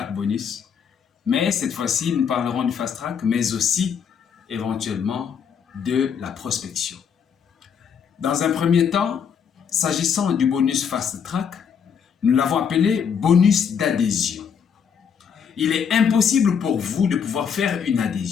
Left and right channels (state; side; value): quieter; right; 7.2 dB